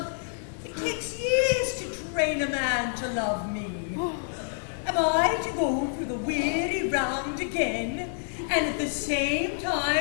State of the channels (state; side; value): silent; right; 59 dB below the other